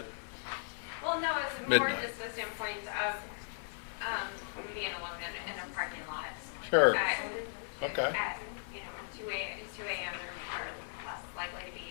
Well, no, it's more Midnight. just the standpoint of being alone in a parking lot. Sure. At, Okay. At 2 a.m. there are less likely to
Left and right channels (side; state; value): right; silent; 53 dB below the other